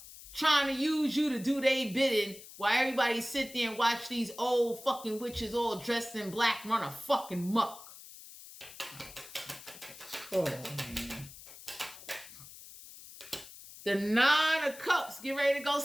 Trying to use you to do their bidding while everybody sit there and watch these old fucking witches all dressed in black run a fucking muck. Oh, man. The Nine of Cups. Get ready to go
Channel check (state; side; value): noise; left; hiss, 17 dB below the sound